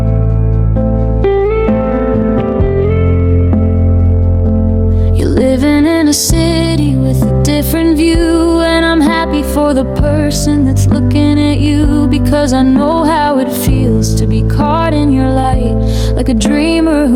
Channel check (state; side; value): identical; both; correlation 1.00